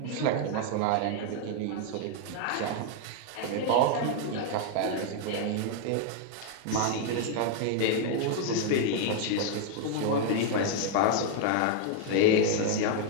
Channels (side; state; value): both; different; correlation 0.00